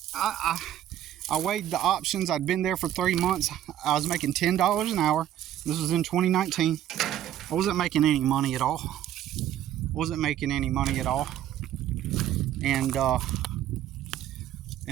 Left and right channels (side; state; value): left; quieter; 11.6 dB